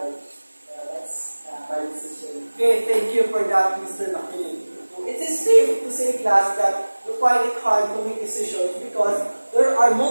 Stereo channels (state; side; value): inverted; both; correlation -1.00